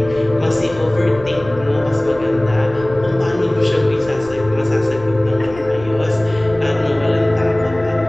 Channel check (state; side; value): noise; left; rumble, 19 dB below the sound